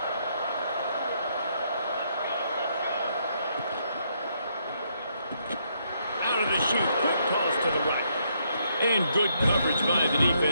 Out of the chute, quick toss to the right. And good coverage by the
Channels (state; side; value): inverted; both; correlation -0.74